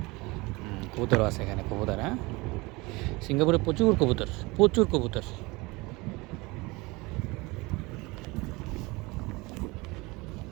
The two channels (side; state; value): left; quieter; 23.9 dB